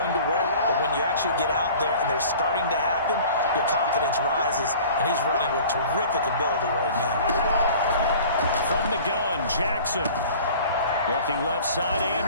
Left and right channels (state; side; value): inverted; both; correlation -0.45